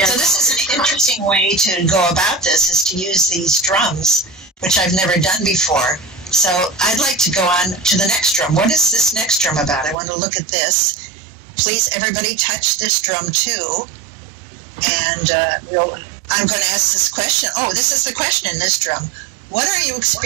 So this is an interesting way to go about this, is to use these drums, which I've never done before. So I'd like to go on to the next drum. What is this next drum about? I want to look at this. Please, everybody, touch this drum too. And I'm going to ask this question. Oh, this is the question in this drum. What are you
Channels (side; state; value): left; drops out; at 10.0 s